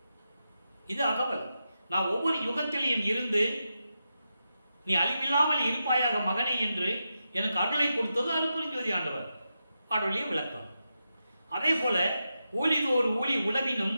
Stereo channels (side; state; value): both; inverted; correlation -0.88